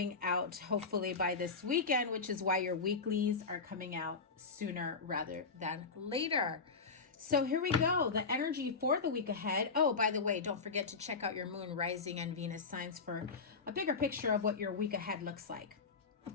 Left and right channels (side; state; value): right; quieter; 4.6 dB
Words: out hopefully by this weekend, which is why your weeklies are coming out sooner rather than later. So here we go, the energy for the week ahead. Oh, by the way, don't forget to check out your Moon, Rising, and Venus signs for a bigger picture of what your week ahead looks like.